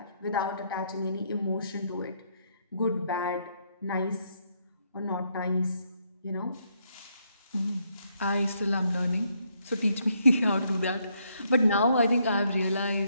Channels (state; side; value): inverted; both; correlation -0.74